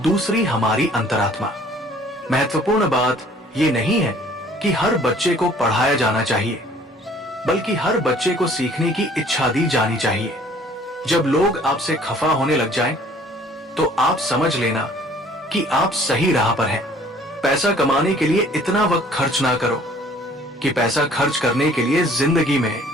हमारी अंतरात्मा। महत्वपूर्ण बात ये नहीं है कि हर बच्चे को पढ़ाया जाना चाहिए, बल्कि हर बच्चे को सीखने की इच्छा दी जानी चाहिए। जब लोग आपसे खफा होने लग जाएं, तो आप समझ लेना कि आप सही राह पर हैं। पैसा कमाने के लिए इतना वक्त खर्च ना करो कि पैसा खर्च करने के लिए जिंदगी में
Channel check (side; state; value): both; normal; correlation 0.55